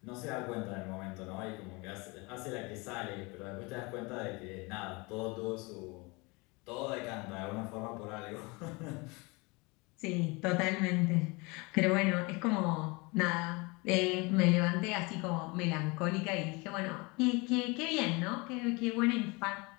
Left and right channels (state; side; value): quieter; right; 26.8 dB